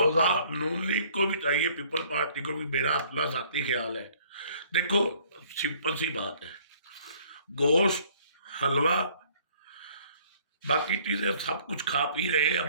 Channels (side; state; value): both; inverted; correlation -0.59